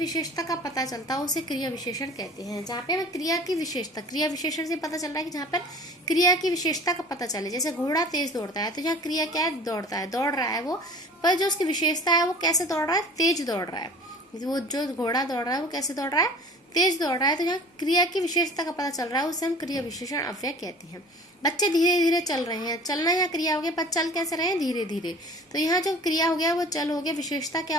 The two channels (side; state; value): both; normal; correlation 0.44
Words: का पता चलता है उसे क्रिया विशेषण कहते हैं। जहाँ पे हमें क्रिया की विशेषता, क्रिया विशेषण से पता चल रहा है कि जहाँ पर क्रिया की विशेषता का पता चले। जैसे घोड़ा तेज दौड़ता है, तो यहाँ क्रिया क्या है, दौड़ता है, दौड़ रहा है वो, पर जो उसकी विशेषता है वो कैसे दौड़ रहा है, तेज दौड़ रहा है। वो जो घोड़ा दौड़ रहा है वो कैसे दौड़ रहा है, तेज दौड़ रहा है। तो यहाँ क्रिया की विशेषता का पता चल रहा है, उसे हम क्रिया विशेषण अव्यय कहते हैं। बच्चे धीरे धीरे चल रहे हैं, चलना यहाँ क्रिया हो गया, पर चल कैसे रहे हैं, धीरे धीरे। तो यहाँ जो क्रिया हो गया वो चल हो गया, विशेषता क्या